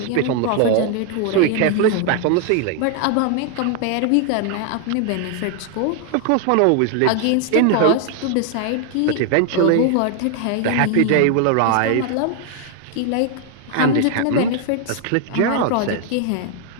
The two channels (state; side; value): different; both; correlation 0.00